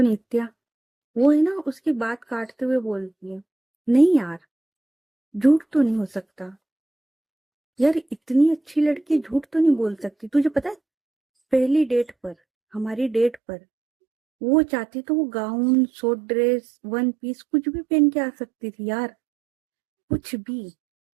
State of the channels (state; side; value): drops out; left; at 13.4 s